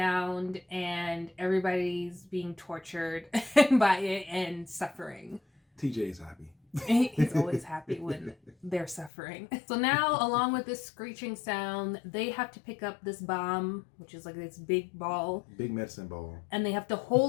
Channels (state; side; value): drops out; right; at 9.1 s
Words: and everybody's being tortured by it and suffering. TJ's happy. He's always happy when they're suffering. So now, along with this screeching sound, they have to pick up this bomb, which is like this big ball. Big medicine ball. And they have to